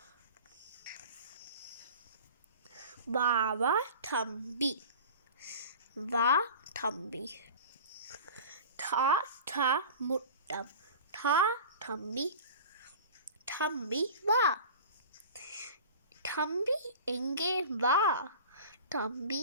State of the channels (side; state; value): both; inverted; correlation -0.37